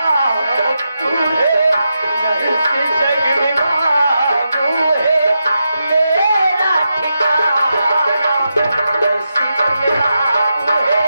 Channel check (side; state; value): both; inverted; correlation -0.87